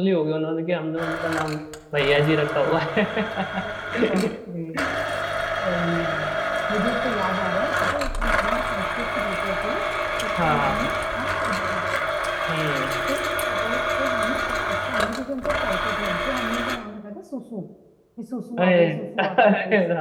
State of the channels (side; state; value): both; identical; correlation 1.00